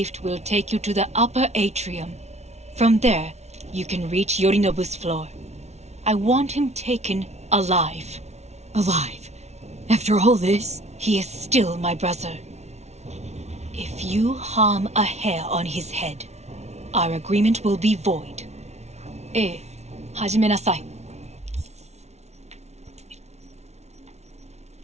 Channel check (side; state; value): left; late; 0.32 ms